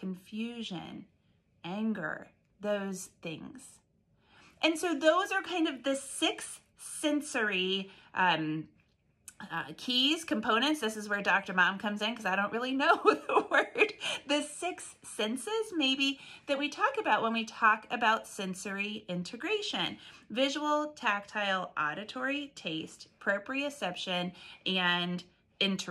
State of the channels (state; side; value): identical; both; correlation 1.00